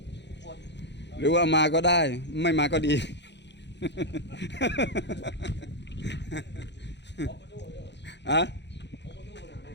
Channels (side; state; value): right; late; 0.51 ms